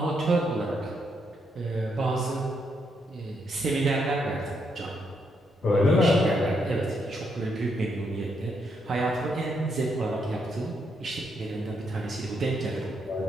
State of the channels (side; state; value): both; normal; correlation 0.78